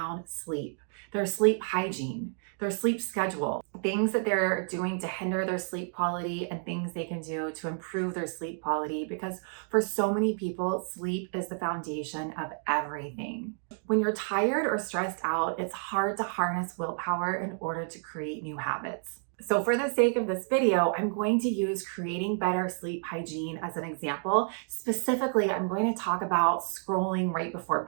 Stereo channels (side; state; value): left; silent; 58 dB below the other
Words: sleep, their sleep hygiene, their sleep schedule, things that they're doing to hinder their sleep quality and things they can do to improve their sleep quality, because for so many people, sleep is the foundation of everything. When you're tired or stressed out, it's hard to harness willpower in order to create new habits. So for the sake of this video, I'm going to use creating better sleep hygiene as an example. Specifically, I'm going to talk about scrolling right before